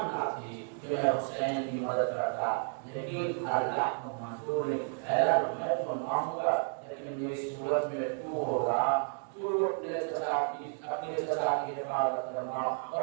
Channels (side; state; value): left; silent; 56 dB below the other